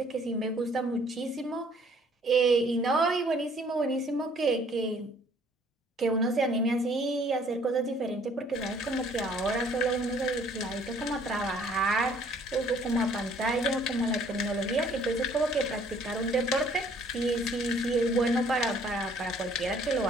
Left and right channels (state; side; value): normal; both; correlation 0.59